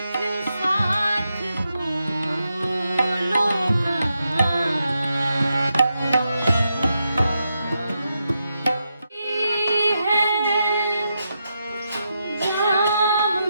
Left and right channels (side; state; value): both; inverted; correlation -0.85